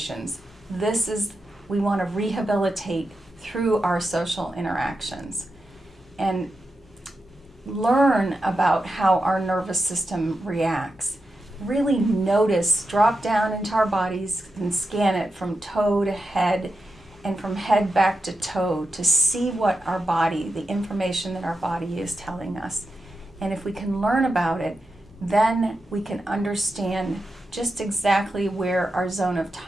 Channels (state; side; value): normal; both; correlation 0.89